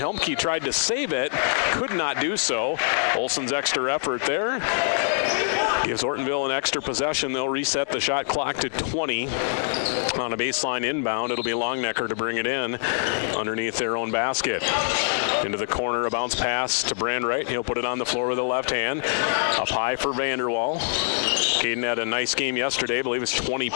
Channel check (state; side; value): silent; right; digital silence